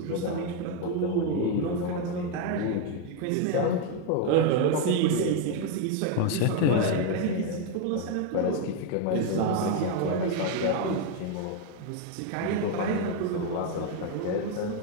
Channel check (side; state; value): both; different; correlation 0.01